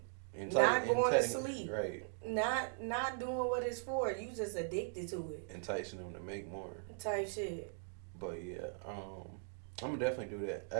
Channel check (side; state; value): left; silent; digital silence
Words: Not going to sleep. Right. Not doing what it's for. You just addicted to it. Enticing them to make more. Type shit. But yeah, I'm gonna definitely do that.